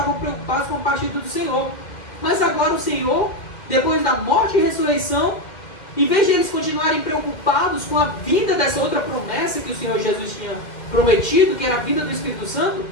preocupados com a partida do Senhor. Mas agora o Senhor, depois da morte e ressurreição, em vez de eles continuarem preocupados com a vinda dessa outra promessa que o Senhor Jesus tinha prometido, que era a vinda do Espírito Santo,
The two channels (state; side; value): late; right; 2.1 ms